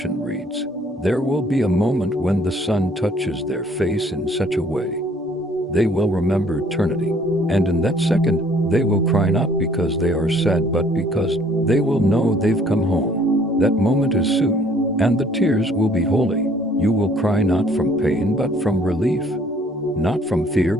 reads, there will be a moment when the sun touches their face in such a way they will remember eternity, and in that second they will cry, not because they are sad, but because they will know they've come home. That moment is soon, and the tears will be holy. You will cry not from pain but from relief, not from fear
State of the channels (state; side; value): normal; both; correlation 0.59